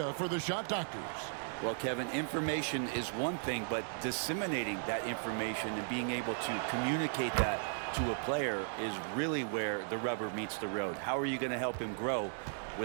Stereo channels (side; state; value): left; silent; digital silence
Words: for the shot doctors. Well, Kevin, information is one thing, but disseminating that information and being able to communicate that to a player is really where the rubber meets the road. How are you going to help him grow